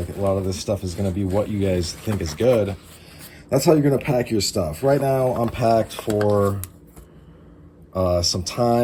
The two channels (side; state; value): both; identical; correlation 1.00